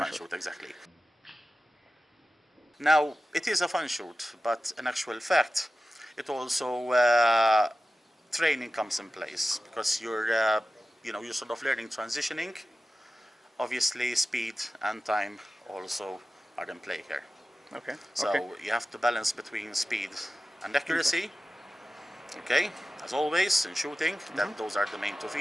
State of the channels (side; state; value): both; normal; correlation 0.94